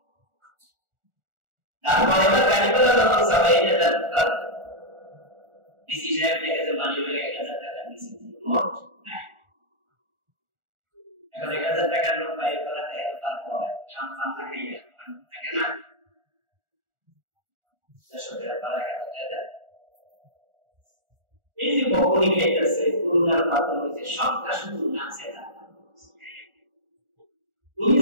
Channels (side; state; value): left; late; 1.4 ms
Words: তারপরে এবার গাড়ি পেলা যখন সবাই ডিসি সাহেব দেখেছে মানি ব্যাগে 1000 টাকা নিচে নোট নাই। এখন 1000 টাকার নোট বাইরে করাতে তারপর কাম কাম খাইয়া থাকে না 600 টাকা পারা গেল। এই যে বকনি খাইতেছে করুণার পাত্র হয়েছে সবটা শুধু নাচে না। উনি